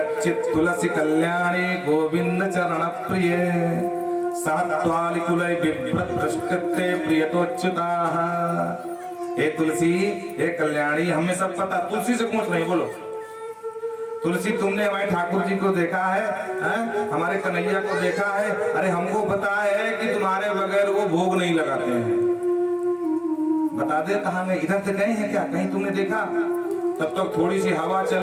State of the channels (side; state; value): both; identical; correlation 1.00